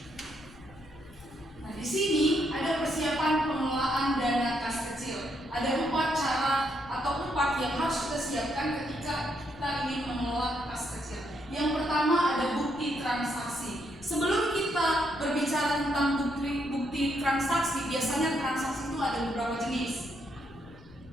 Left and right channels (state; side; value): noise; left; rumble, 22 dB below the sound